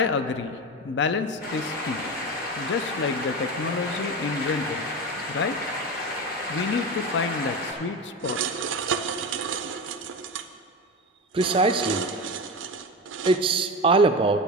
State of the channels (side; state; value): both; normal; correlation 0.22